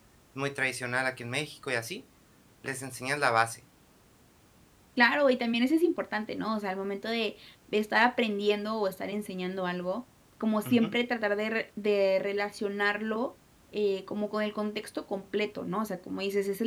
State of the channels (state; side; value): identical; both; correlation 1.00